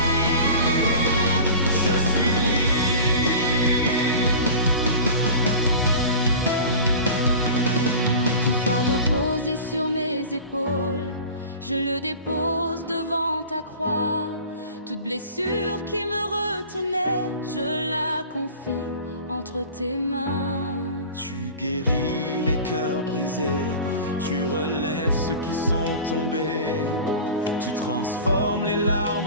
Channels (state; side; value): inverted; both; correlation -0.37